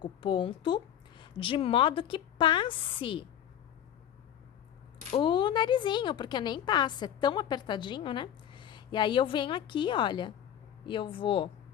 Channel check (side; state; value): right; quieter; 10.2 dB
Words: o ponto, de modo que passe o narizinho, porque nem passa, é tão apertadinho, né? E aí eu venho aqui, olha, e eu vou